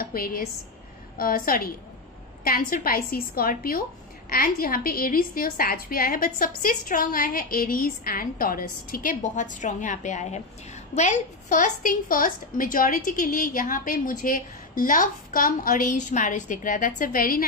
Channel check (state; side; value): quieter; right; 3.3 dB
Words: Aquarius, sorry cancer, Pisces, Scorpio, and यहाँ पे एरीज, लियो, सैज भी आया है, बट सबसे स्ट्रांग आया है एरीज एंड टॉरस, ठीक है। बहुत स्ट्रांग यहाँ पे आया है। Well, first thing first, majority के लिए यहाँ पे मुझे लव कम अरेंज्ड मैरिज दिख रहा है। That's a very